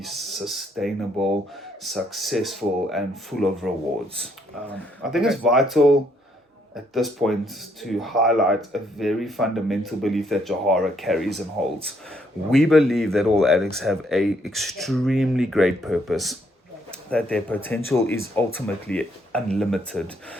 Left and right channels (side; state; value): both; normal; correlation 0.71